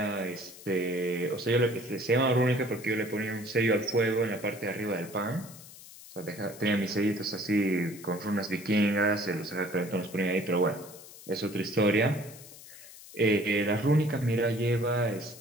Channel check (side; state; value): left; noise; hiss, 18 dB below the sound